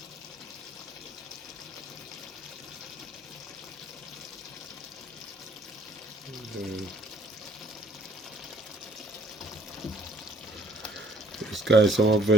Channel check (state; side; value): normal; both; correlation 0.60